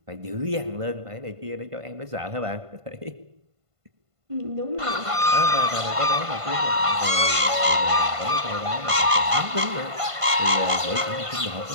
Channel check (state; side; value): late; left; 1.5 ms